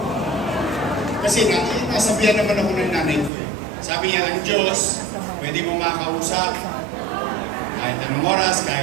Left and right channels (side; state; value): left; drops out; at 3.3 s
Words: Kasi nasabihan naman ako ng nanay ko eh. Sabi niya, ang Diyos, pwede mo makausap, kahit anong oras,